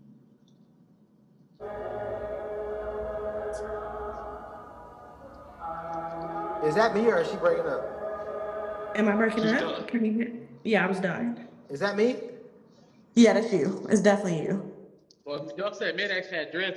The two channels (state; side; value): identical; both; correlation 1.00